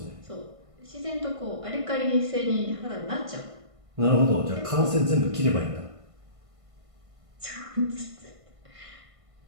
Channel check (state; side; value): late; left; 1.5 ms